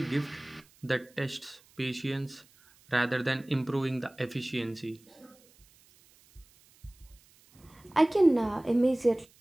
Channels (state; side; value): noise; right; hiss, 29 dB below the sound